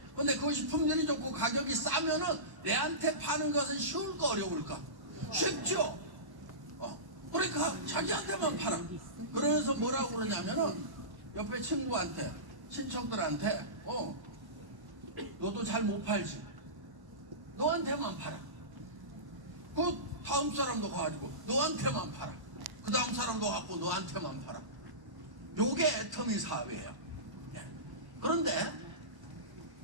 근데 그것이 품질이 좋고 가격이 싸면은 내한테 파는 것은 쉬울까 어려울까? 쉽죠? 그러니까 자기한테만 팔아. 그러면서 뭐라고 그러냐면은 옆에 친구한테, 친척들한테 너도 잘 못 팔지. 너한테만 팔아. 그 다음 사람도 가가지고 너한테만 팔아. 그 다음 사람도 갖고 너한테만 팔아. 요게 애터미 사업이에요. 예. 그런데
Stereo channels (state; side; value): late; left; 1.1 ms